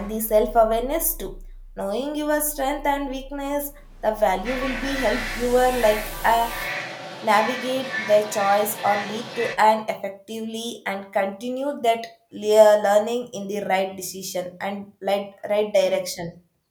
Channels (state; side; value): identical; both; correlation 1.00